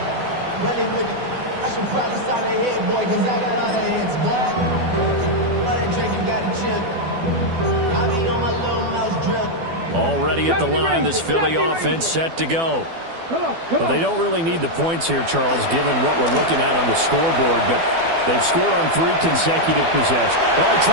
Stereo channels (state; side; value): late; left; 12 ms